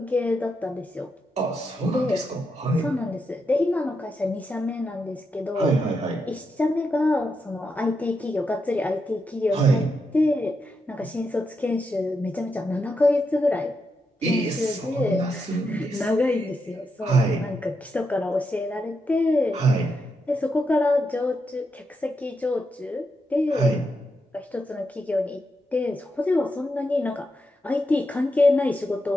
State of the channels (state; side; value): normal; both; correlation 0.84